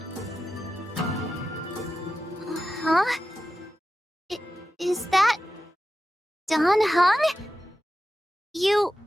Huh? Is that... Don Hung? You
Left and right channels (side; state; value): both; normal; correlation 0.92